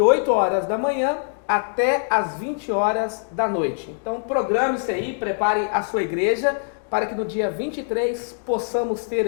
horas da manhã até as 20 horas da noite. Então programe-se aí, prepare a sua igreja, para que no dia 23 possamos ter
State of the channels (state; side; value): silent; right; digital silence